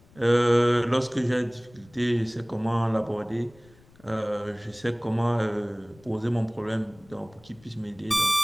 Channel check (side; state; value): left; noise; rumble, 27 dB below the sound